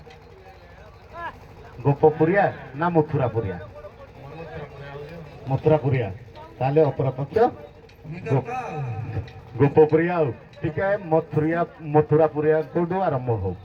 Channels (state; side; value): identical; both; correlation 1.00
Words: ଗୋପପୁରିଆ ନା ମଥୁରାପୁରିଆ? ମଥୁରାପୁରିଆ। ତାହେଲେ ଅପରପକ୍ଷ ଗୋପପୁରିଆ। ଆଉ ଟିକେ ମଥୁରାପୁରିଆ କୋଉଠୁ ଆରମ୍ଭ ହଉ।